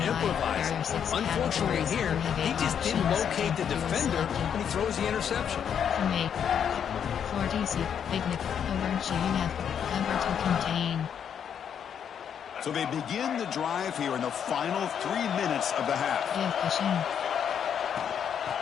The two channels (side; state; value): right; quieter; 8.2 dB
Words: improvise. Unfortunately here, he just didn't locate the defender when he throws the interception. 40C, Picnic, over GF, cover to contain. So they begin the drive here in the final 3 minutes of the half.